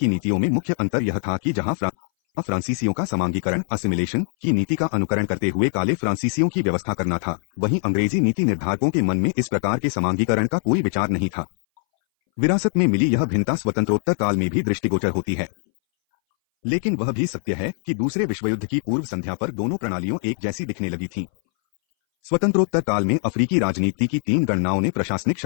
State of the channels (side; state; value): right; silent; 61 dB below the other